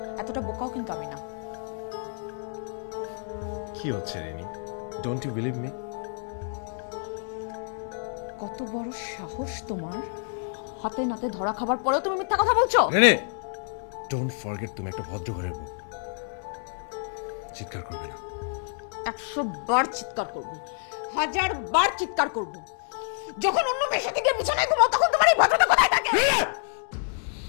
এতটা বোকাও কিন্তু আমি না। কি হচ্ছে Rini? Don't you believe me? কত বড় সাহস তোমার, হাতে নাতে ধরা খাবার পরেও তুমি মিথ্যা কথা বলছো? রিনি, ডোন্ট ফরগেট তুমি একটা ভদ্র ঘরের বউ। চিৎকার করবে না। 100 বার চিৎকার করব, 1000 বার চিৎকার করব। যখন অন্য মেয়ের সাথে গিয়ে বিছানায় ঘুমাও তখন তোমার এই ভদ্রতা কোথায় থাকে?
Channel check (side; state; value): right; silent; 59 dB below the other